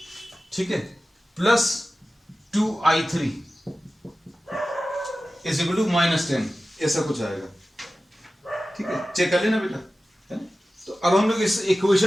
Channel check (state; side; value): normal; both; correlation 0.95